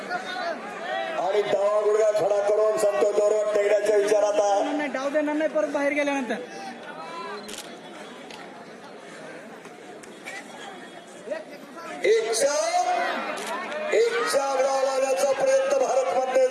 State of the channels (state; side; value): identical; both; correlation 1.00